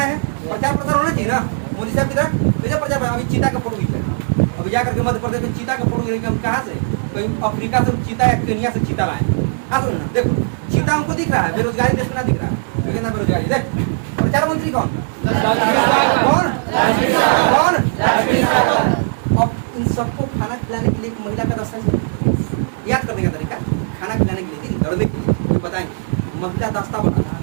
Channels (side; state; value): left; silent; 58 dB below the other